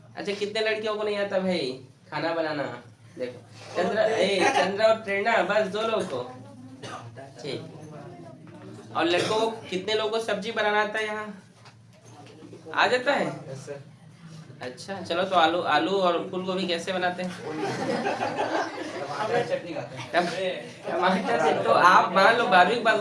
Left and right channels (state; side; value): identical; both; correlation 1.00